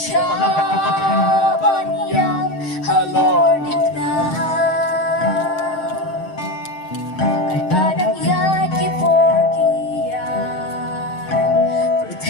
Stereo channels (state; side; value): late; right; 7.6 ms